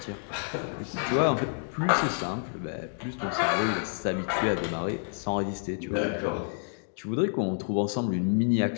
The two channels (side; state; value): right; silent; digital silence